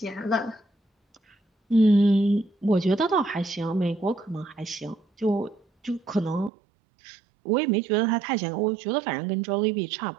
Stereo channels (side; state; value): left; drops out; at 6.5 s